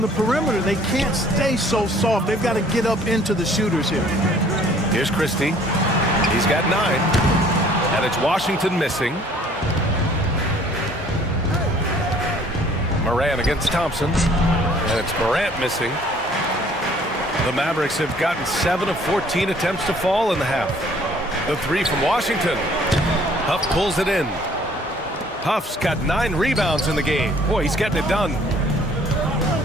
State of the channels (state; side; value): normal; both; correlation 0.57